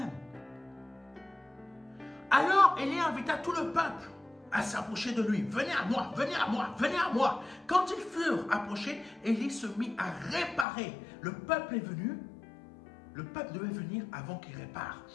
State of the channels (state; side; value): drops out; right; at 10.7 s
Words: Alors Élie invita tout le peuple à s'approcher de lui. Venez à moi, venez à moi, venez à moi. Quand ils furent approchés, Élie se mit à réparer. Le peuple est venu. Le peuple devait venir avant qu'il répare.